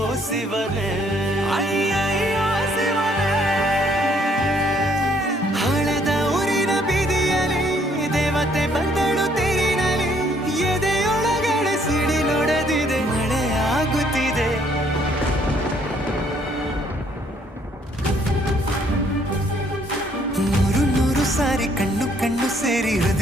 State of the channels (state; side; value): normal; both; correlation 0.66